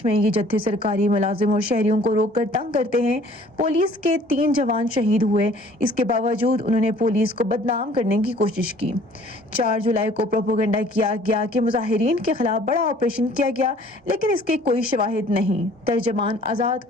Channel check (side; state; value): both; normal; correlation 0.54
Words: میں یہ جتھے سرکاری ملازم اور شہریوں کو روک کر تنگ کرتے ہیں۔ پولیس کے 3 جوان شہید ہوئے، اس کے باوجود انہوں نے پولیس کو بدنام کرنے کی کوشش کی۔ 4 جولائی کو پروپیگنڈا کیا گیا کہ مظاہرین کے خلاف بڑا آپریشن کیا گیا، لیکن اس کے کوئی شواہد نہیں۔ ترجمان آزاد